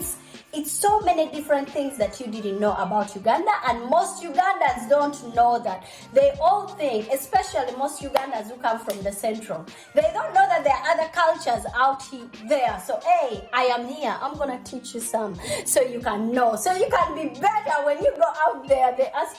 so many different things that you didn't know about Uganda, and most Ugandans don't know that. They all think, especially most Ugandans who come from the central, they don't know that there are other cultures out there. So hey, I am here, I'm gonna teach you some so you can know, so you can be better when you go out there. They ask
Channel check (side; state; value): both; identical; correlation 1.00